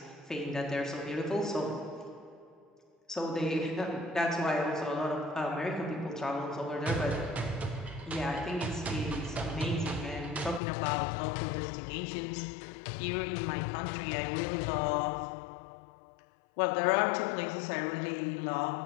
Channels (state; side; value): drops out; right; at 10.6 s